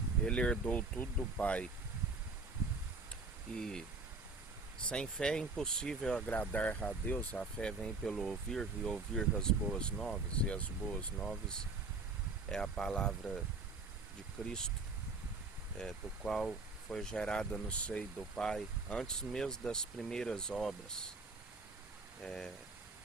ele herdou tudo do Pai. E sem fé é impossível agradar a Deus. A fé vem pelo ouvir, e ouvir as boas novas, e as boas novas é a palavra de Cristo, do qual foi gerada no seio do Pai, antes mesmo das primeiras obras,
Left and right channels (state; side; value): quieter; left; 3.8 dB